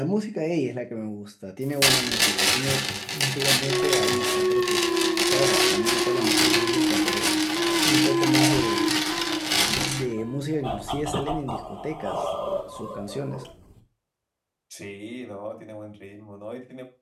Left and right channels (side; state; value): both; identical; correlation 1.00